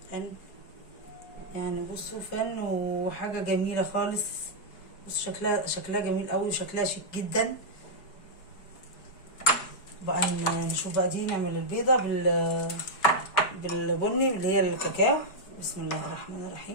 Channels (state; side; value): late; right; 4.7 ms